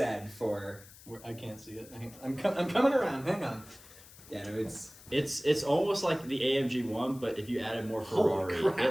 for, I can't see it. I'm coming around. Hang on. yeah, no, it's, It's almost like the AMG one, but if you added more Holy Ferrari, crap.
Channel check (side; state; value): left; noise; hiss, 21 dB below the sound